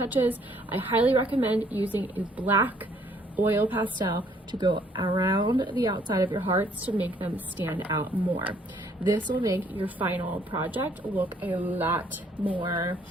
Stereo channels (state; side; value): normal; both; correlation 0.64